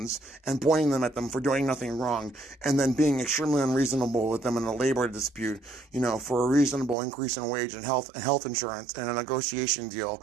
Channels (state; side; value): drops out; left; at 7.0 s